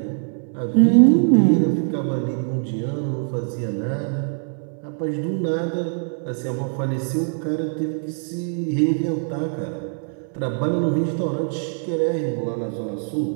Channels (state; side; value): silent; left; 64 dB below the other